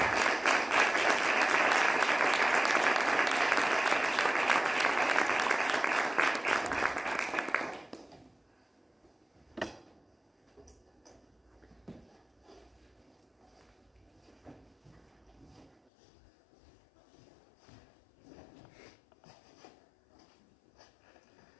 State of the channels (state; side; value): drops out; right; at 15.9 s